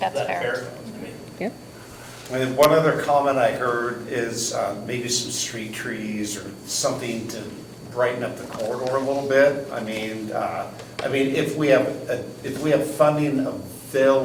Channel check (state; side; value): identical; both; correlation 1.00